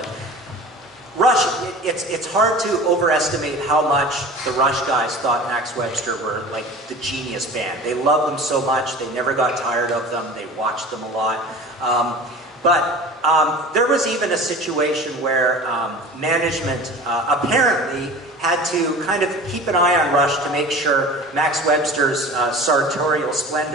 Rush, it's hard to overestimate how much the Rush guys thought Max Webster were like the genius band. They loved them so much, they never got tired of them, they watched them a lot. But there was even a situation where management apparently had to kind of keep an eye on Rush to make sure Max Webster's sartorial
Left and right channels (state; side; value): normal; both; correlation 0.38